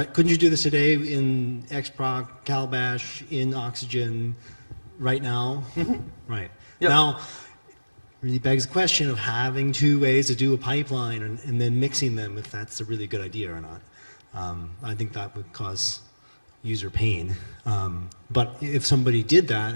Couldn't you do this today in XProc, Calabash, in Oxygen, right now? Mm-hmm. Right. Yep. Now, really begs the question of having two ways to do a pipeline and then mixing them, if that's a really good idea or not. I think that would cause user pain. But if somebody did that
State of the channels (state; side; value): inverted; both; correlation -1.00